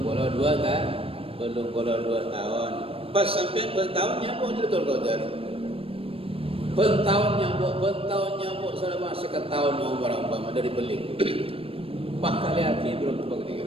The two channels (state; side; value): late; left; 0.27 ms